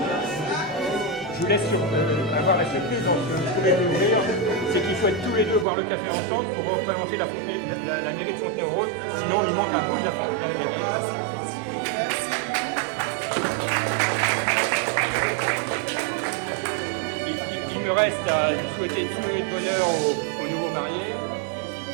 vous laisse avoir la surprise dans ce que vous pouvez découvrir, c'est qu'ils souhaitent tous les deux boire le café ensemble pour représenter la mairie de Fontenay-aux-Roses, sinon il manque un bout de la mairie. Il me reste à vous souhaiter tout le bonheur aux nouveaux mariés.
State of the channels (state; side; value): drops out; left; at 5.7 s